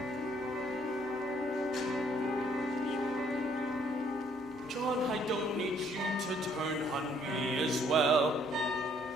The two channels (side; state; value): both; normal; correlation 0.65